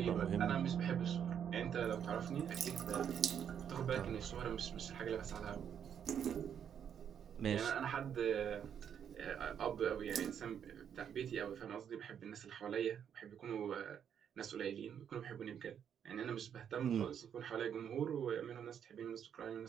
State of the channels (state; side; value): quieter; left; 8.5 dB